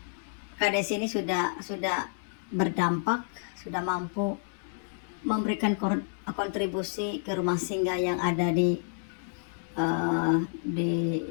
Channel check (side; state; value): right; silent; 58 dB below the other